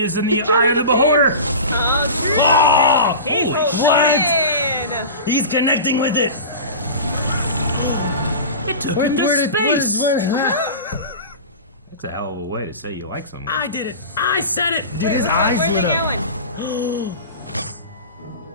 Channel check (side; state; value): both; inverted; correlation -0.32